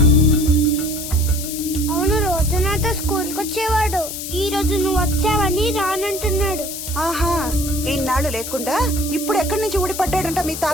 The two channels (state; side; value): noise; left; hiss, 7 dB below the sound